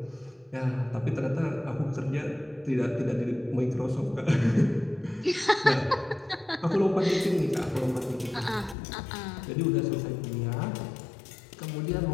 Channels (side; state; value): right; drops out; at 8.8 s